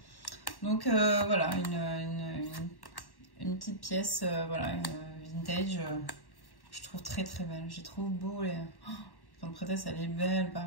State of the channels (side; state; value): right; late; 1.1 ms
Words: Donc voilà, une petite pièce, voilà, vintage. Je trouve très belle. Je trouve beau. Les... Oh, Grande Prêtresse, elle est belle,